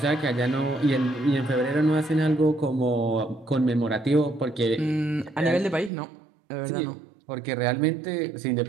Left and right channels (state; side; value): drops out; left; at 5.9 s